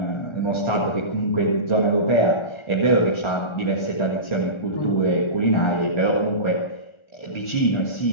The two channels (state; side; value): late; right; 1.4 ms